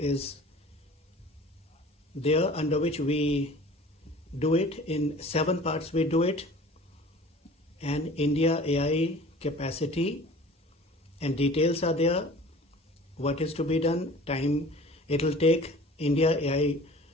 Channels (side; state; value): both; normal; correlation 0.44